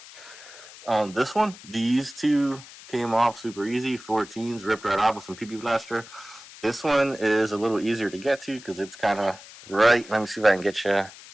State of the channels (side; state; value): left; noise; hiss, 18 dB below the sound